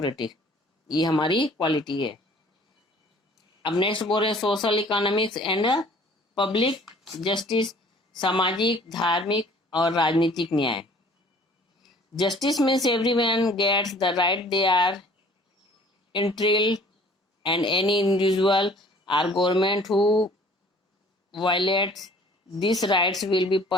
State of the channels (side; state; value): both; normal; correlation 0.53